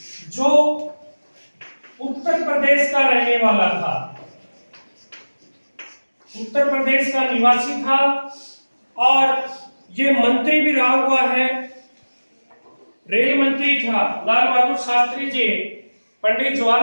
जो उत्तर प्रदेश का रहने वाला था, उत्तर प्रदेश का निवासी था और ये मंत्री भी रहा हुआ है, रेल मंत्री था। लाल बहादुर शास्त्री जी पंडित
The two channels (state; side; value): inverted; both; correlation -1.00